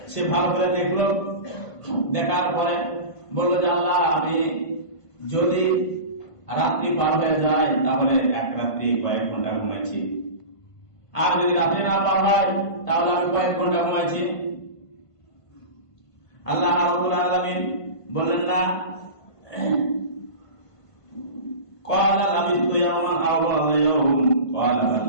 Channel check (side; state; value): right; late; 1.5 ms